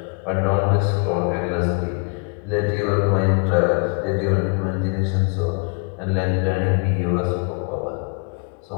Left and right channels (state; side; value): quieter; right; 35.5 dB